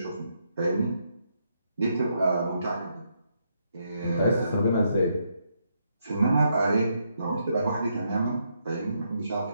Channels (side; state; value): both; inverted; correlation -0.78